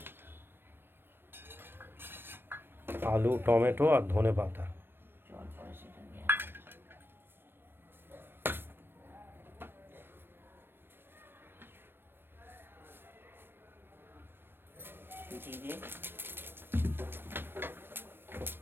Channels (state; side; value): late; left; 0.10 ms